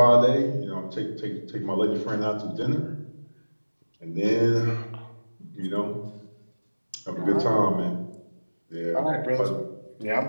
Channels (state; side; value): inverted; both; correlation -1.00